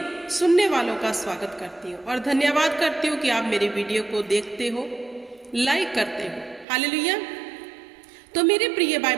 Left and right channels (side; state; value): left; drops out; at 6.7 s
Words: सुनने वालों का स्वागत करती हूँ और धन्यवाद करती हूँ कि आप मेरी वीडियो को देखते हो, लाइक करते हो। हालेलुया। तो मेरे प्रिय भाई